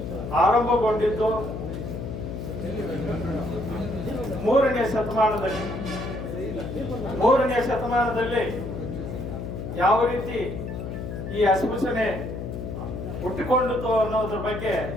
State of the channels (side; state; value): left; noise; hum, 6 dB below the sound